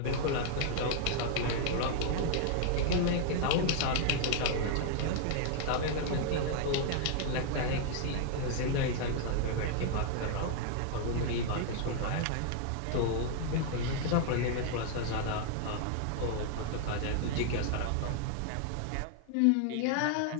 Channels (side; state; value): both; different; correlation 0.00